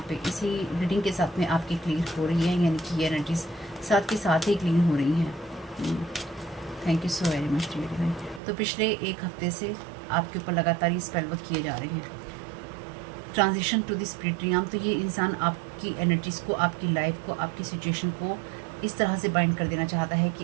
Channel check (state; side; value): drops out; left; at 8.4 s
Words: पे इसी रीडिंग के साथ में आपकी क्लियर हो रही है, यानी कि ये एनर्जीज साथ के साथ ही क्लीन हो रही हैं। Thank you so very much dear divine. तो पिछले एक हफ्ते से आपके ऊपर लगातार ये स्पेल वर्क किए जा रहे हैं। ट्रांजिशन टू द स्पिरिट रियम, तो ये इंसान आपकी एनर्जीज को, आपकी लाइफ को, आपकी सिचुएशन को इस तरह से बाइंड कर देना चाहता है